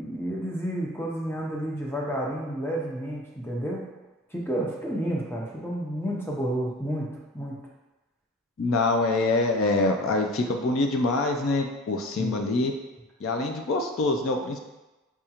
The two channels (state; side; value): normal; both; correlation 0.39